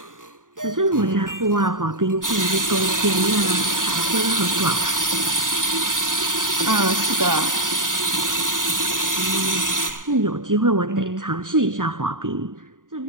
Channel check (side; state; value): left; late; 0.89 ms